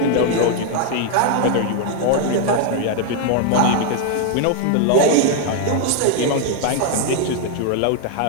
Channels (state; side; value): different; both; correlation 0.00